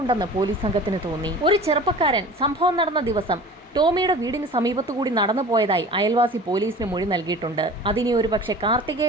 പോലീസ് സംഘത്തിന് തോന്നി. ഒരു ചെറുപ്പക്കാരൻ സംഭവം നടന്ന ദിവസം ടോമിയുടെ വീടിന് സമീപത്തുകൂടി നടന്നു പോയതായി അയൽവാസി പോലീസിന് മൊഴി നൽകിയിട്ടുണ്ട്. അതിനി ഒരു പക്ഷേ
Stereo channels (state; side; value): normal; both; correlation 0.41